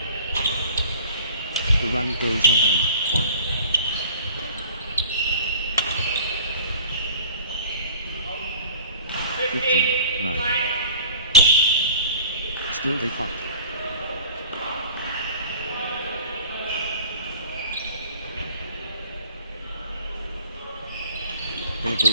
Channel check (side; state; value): both; inverted; correlation -0.46